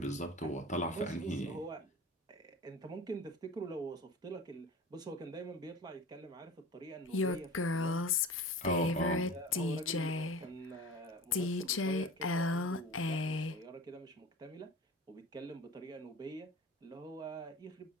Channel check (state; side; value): normal; both; correlation 0.36